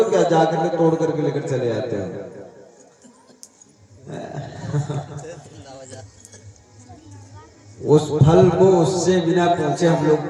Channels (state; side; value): identical; both; correlation 1.00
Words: क्या? जाकर के तोड़ करके लेकर चले आते हो? उस फल को उससे बिना पूछे हम